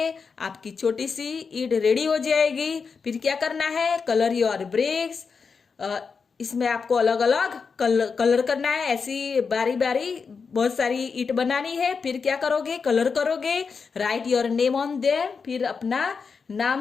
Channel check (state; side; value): quieter; right; 5.4 dB